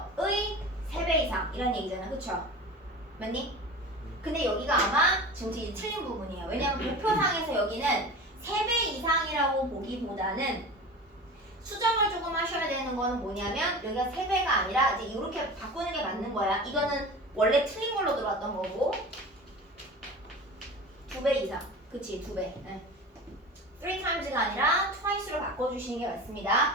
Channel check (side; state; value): both; normal; correlation 0.34